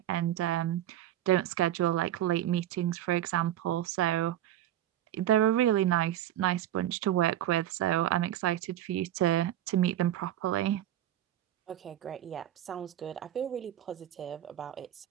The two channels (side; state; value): left; quieter; 12.3 dB